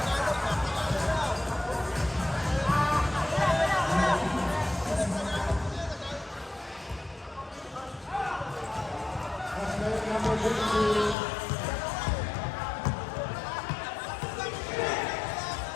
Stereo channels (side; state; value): right; drops out; at 11.2 s